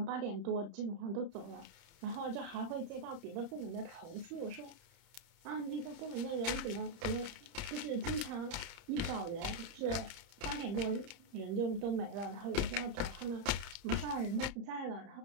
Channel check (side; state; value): left; late; 30 ms